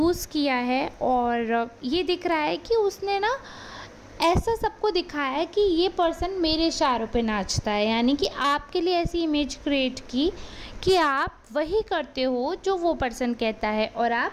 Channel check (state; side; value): identical; both; correlation 1.00